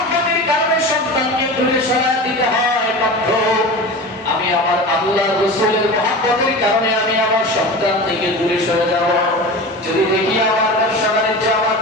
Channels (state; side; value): normal; both; correlation 0.31